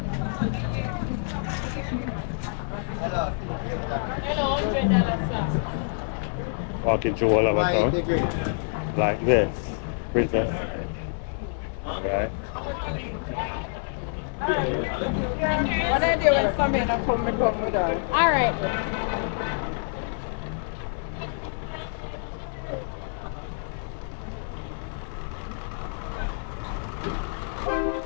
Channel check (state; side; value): silent; right; 60 dB below the other